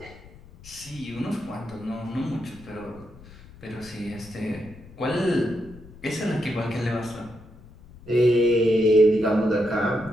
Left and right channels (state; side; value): noise; left; rumble, 20 dB below the sound